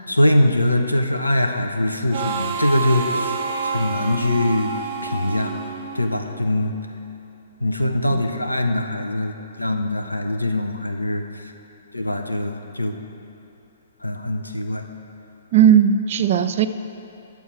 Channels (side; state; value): both; inverted; correlation -0.63